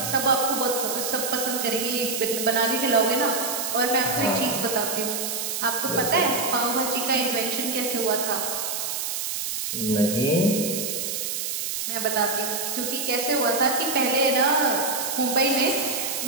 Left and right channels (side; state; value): right; noise; hiss, 3 dB below the sound